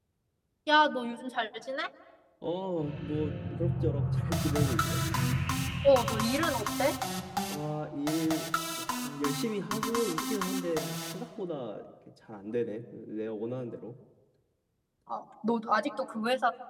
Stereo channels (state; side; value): identical; both; correlation 1.00